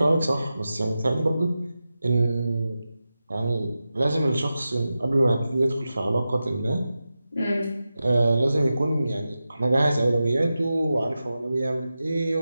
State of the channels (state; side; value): inverted; both; correlation -0.92